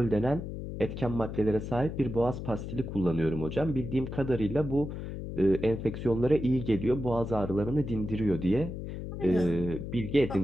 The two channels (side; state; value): left; noise; hum, 7 dB below the sound